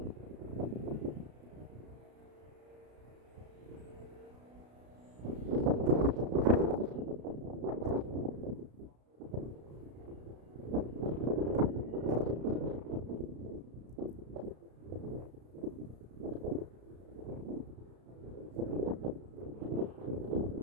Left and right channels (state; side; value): late; left; 33 ms